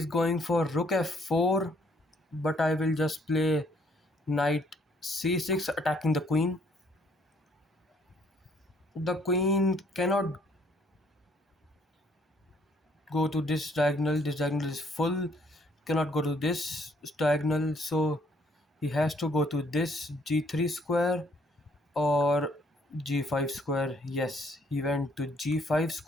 going for rook f4, but I will just play knight c6 attacking the queen. The queen cannot go to this diagonal. This diagonal is full. Cannot go to this diagonal, so he has to go to this g3 square or g5 square. Yes, he went to g5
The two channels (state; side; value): normal; both; correlation 0.65